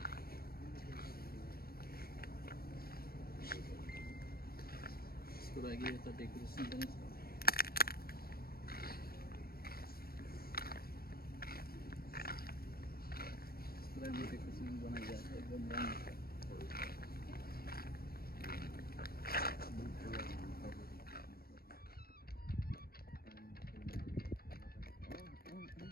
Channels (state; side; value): late; right; 0.44 ms